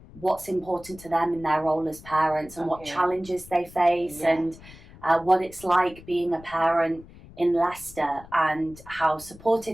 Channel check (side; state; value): left; noise; rumble, 20 dB below the sound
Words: what's important to them in their role as parents and what challenges they face and what it's like being a parent in Leicester and how